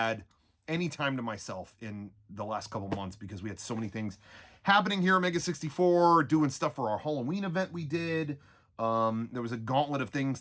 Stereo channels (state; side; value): identical; both; correlation 1.00